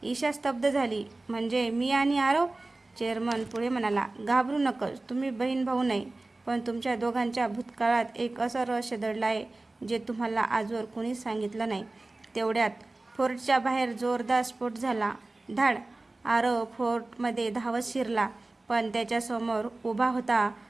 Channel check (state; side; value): quieter; left; 3.0 dB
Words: ईशा स्तब्ध झाली. म्हणजे मी आणि आरव? चेअरमन पुढे म्हणाला, घाबरू नकोस. तुम्ही बहीण भाऊ नाही, पण तुमच्या दोघांच्या भूतकाळात एक असं रहस्य दडलं आहे जे तुम्हाला आजवर कोणीच सांगितलं नाही. तेवढ्यात फोर्टच्या बाहेर जोरदार स्फोट झाला. धाड. आरव फोर्टमध्ये धावत शिरला, पण त्याच्यासमोर उभा होता